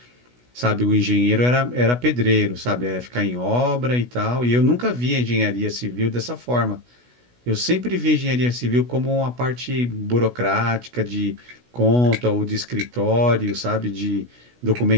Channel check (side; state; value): left; late; 16 ms